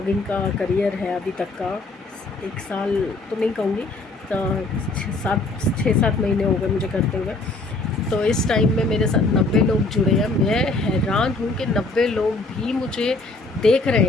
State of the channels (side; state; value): right; quieter; 3.2 dB